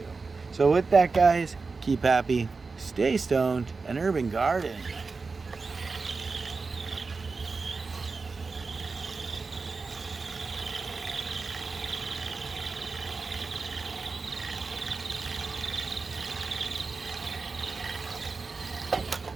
So with that, guys, keep happy, stay stoned, and urban garden.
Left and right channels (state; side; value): quieter; left; 4.3 dB